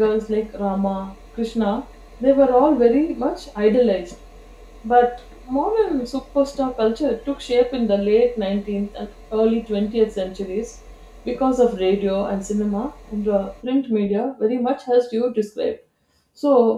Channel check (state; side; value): identical; both; correlation 1.00